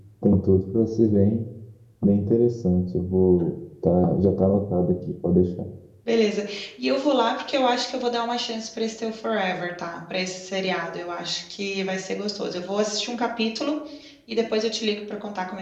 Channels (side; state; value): both; identical; correlation 1.00